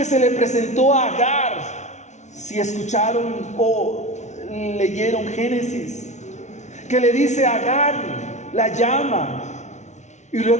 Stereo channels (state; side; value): late; right; 0.33 ms